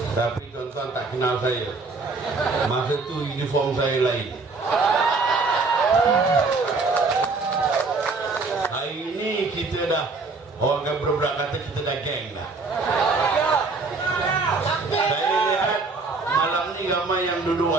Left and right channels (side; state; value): left; quieter; 4.0 dB